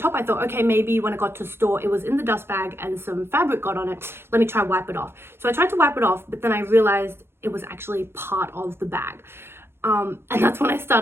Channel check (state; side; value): late; left; 0.12 ms